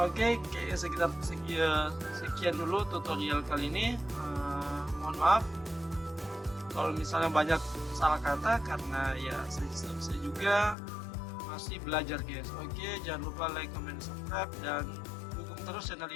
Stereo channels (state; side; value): drops out; right; at 10.8 s